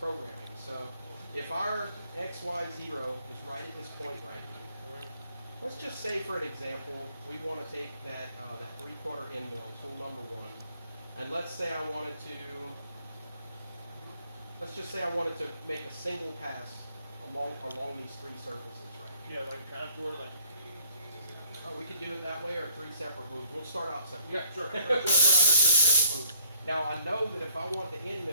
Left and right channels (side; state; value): both; inverted; correlation -0.62